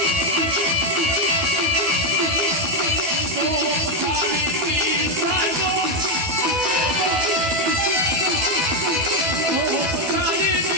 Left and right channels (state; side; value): late; left; 12 ms